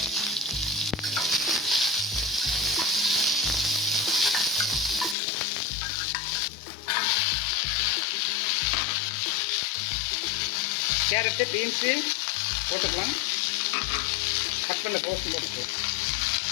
கேரட்டு, பீன்ஸு போட்டுக்கலாம். கட் பண்ண கோஸும் போட்டுக்கலாம்.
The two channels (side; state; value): right; drops out; at 5.2 s